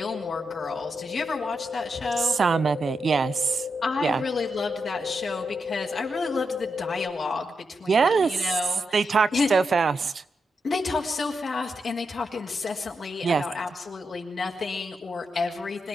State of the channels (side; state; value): both; normal; correlation 0.85